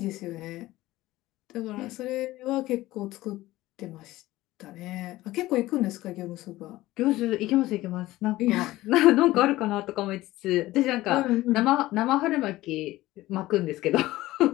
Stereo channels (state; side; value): quieter; right; 17.1 dB